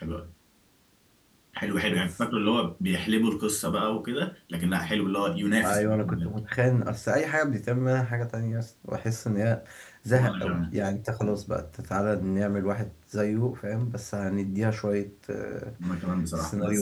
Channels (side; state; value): both; identical; correlation 1.00